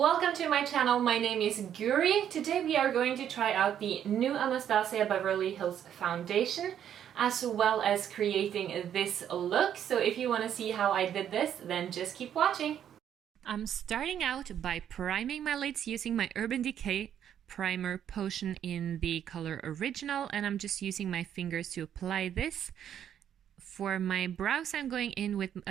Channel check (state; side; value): quieter; left; 9.7 dB